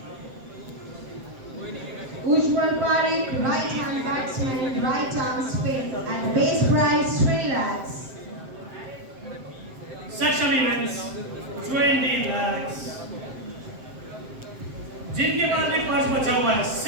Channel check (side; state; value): left; late; 7.6 ms